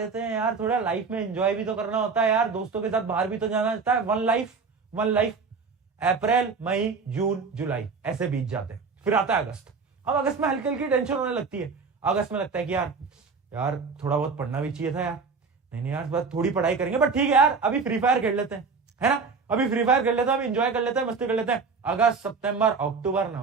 हैं यार, थोड़ा लाइफ में एंजॉय भी तो करना होता है यार, दोस्तों के साथ बाहर भी तो जाना होता है, वन लाइफ। अप्रैल, मई, जून, जुलाई ऐसे बीत जाते हैं। फिर आता है अगस्त। अब अगस्त में हल्की हल्की टेंशन होने लगती है। अगस्त में लगता है कि यार थोड़ा बहुत पढ़ना भी चाहिए था यार, नहीं यार बस थोड़ी पढ़ाई करेंगे, बट ठीक है यार अभी फ्री फायर खेल लेते हैं, है ना, अभी फ्री फायर खेल लेते हैं, अभी एंजॉय कर लेते हैं, मस्ती कर लेते हैं। अगस्त, सितंबर, अक्टूबर,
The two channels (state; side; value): quieter; left; 4.9 dB